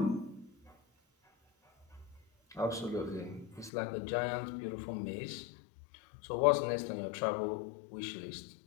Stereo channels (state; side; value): drops out; right; at 3.7 s